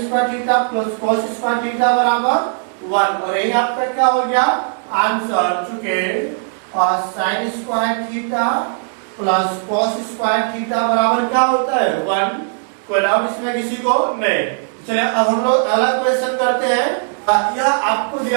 square theta plus cos square theta बराबर 1 और यही आपका क्या हो गया आंसर। चुके sin square theta plus cos square theta बराबर क्या होता है 1। कोई डाउट इसमें किसी को नहीं। चलिए अब हम लोग अगला क्वेश्चन करते हैं। यह आपको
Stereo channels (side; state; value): left; silent; digital silence